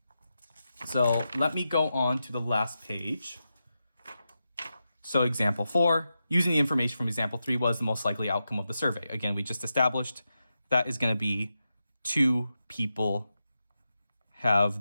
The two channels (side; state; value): both; inverted; correlation -0.89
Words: So let me go on to the last page. So example 4, using the information from example 3 was the most likely outcome of the survey. Again, we just established that is going to be 2 people have